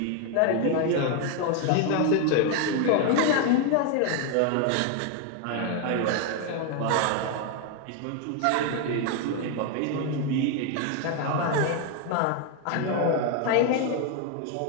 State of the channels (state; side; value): different; both; correlation 0.01